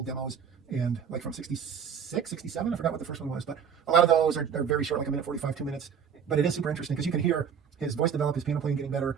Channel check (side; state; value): left; quieter; 7.4 dB